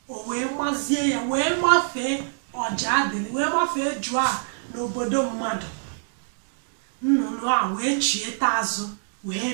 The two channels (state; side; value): silent; left; digital silence